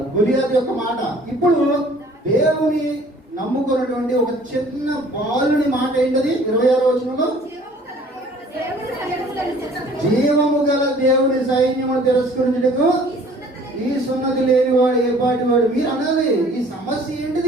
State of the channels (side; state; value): both; normal; correlation 0.53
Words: గొలియాతు యొక్క మాట. ఇప్పుడు దేవుని నమ్ముకున్నటువంటి ఒక చిన్న బాలుని మాట ఏంటది? 26వ వచనంలో, జీవము గల దేవుని సైన్యమును తిరస్కరించుటకు ఈ సున్నతి లేనివాడు ఏ పాటి వాడు. మీరు అనాలి, ఈ సమస్య